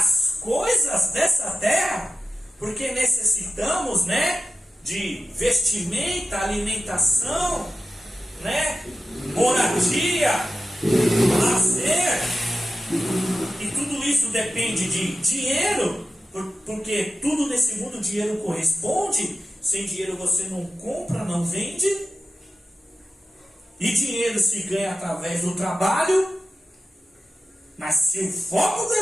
coisas dessa terra, porque necessitamos, de vestimenta, alimentação, moradia, lazer, e tudo isso depende de dinheiro, porque tudo nesse mundo o dinheiro corresponde. Sem dinheiro você não compra, não vende, e dinheiro se ganha através do trabalho. Mas se o foco do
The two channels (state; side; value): normal; both; correlation 0.92